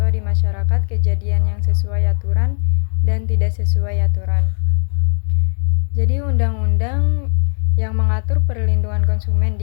di masyarakat kejadian yang sesuai aturan dan tidak sesuai aturan. Jadi undang-undang yang mengatur perlindungan konsumen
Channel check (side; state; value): right; silent; 60 dB below the other